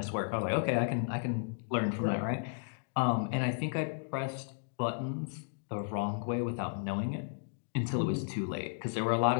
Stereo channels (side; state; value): right; silent; digital silence